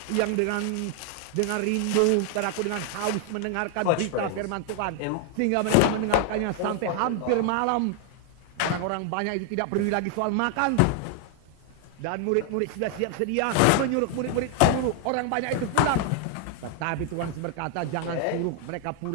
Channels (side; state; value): both; different; correlation 0.00